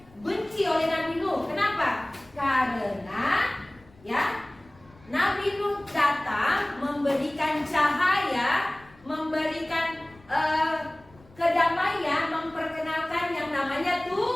benci oleh Nabi Nuh. Kenapa? Karena ya, Nabi Nuh datang memberikan cahaya, memberikan kedamaian, memperkenalkan yang namanya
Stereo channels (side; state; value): left; noise; rumble, 27 dB below the sound